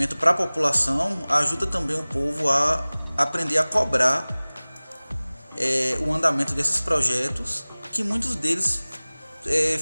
para a população, ajuda também o povo a aprender a cobrar o andamento desses projetos, que muitos deles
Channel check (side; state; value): both; inverted; correlation -1.00